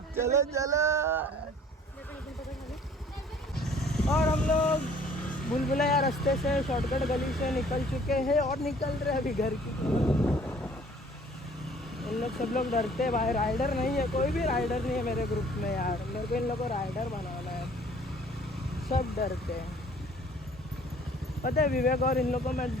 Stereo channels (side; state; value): both; normal; correlation 0.55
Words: चलो चलो। और हम लोग बुलबुलैया रास्ते से शॉर्टकट गली से निकल चुके हैं और निकल रहे अभी घर की। इन लोग सब लोग डरते हैं भाई, राइडर नहीं है, कोई भी राइडर नहीं है मेरे ग्रुप में यार। मेरे को इन लोग को राइडर बनाना है, सब डरते हैं। पता है विवेक और इन लोग को मैं